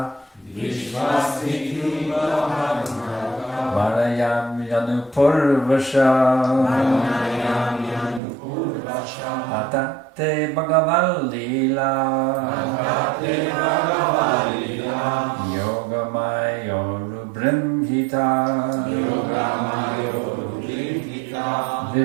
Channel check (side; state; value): left; drops out; at 8.2 s